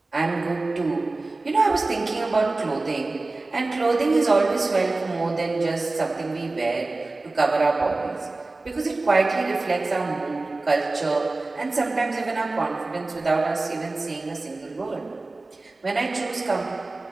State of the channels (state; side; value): quieter; left; 3.2 dB